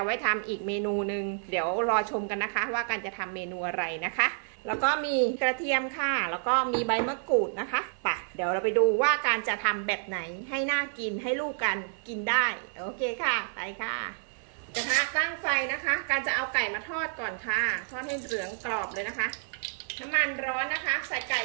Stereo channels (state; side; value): silent; left; digital silence